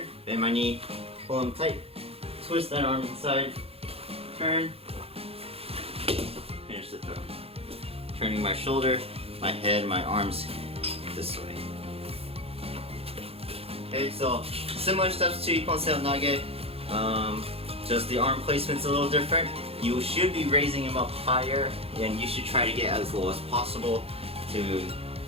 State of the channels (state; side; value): late; left; 0.28 ms